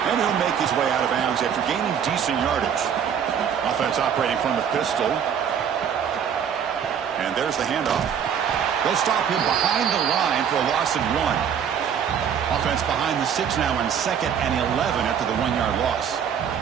And he'll make his way out of bounds after gaining decent yardage. Offense operating from the pistol. And there's the handoff. They'll stop him behind the line for a loss of 1. Offense behind the 6 now on 2nd and 11 after the 1-yard loss.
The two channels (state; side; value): quieter; left; 8.0 dB